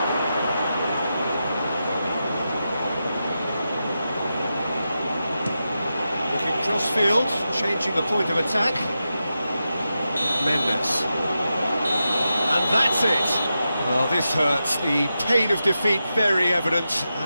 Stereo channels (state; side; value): inverted; both; correlation -0.89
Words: Looking cross-field, changing the point of attack. Mendes. And that's it. Well, this hurts. The pain of defeat very evident,